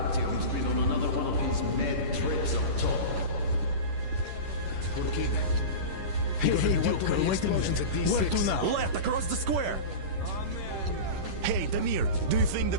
been on another one of his mad trips up top. Hey, Duke, wait a minute. Where to now? Left, across the square. Hey, Damir, do you think the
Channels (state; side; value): late; left; 11 ms